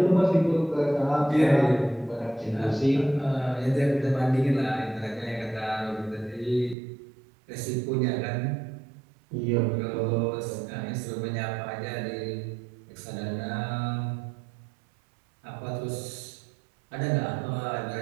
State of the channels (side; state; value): left; drops out; at 6.8 s